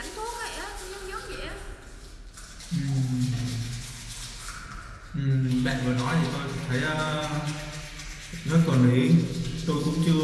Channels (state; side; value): identical; both; correlation 1.00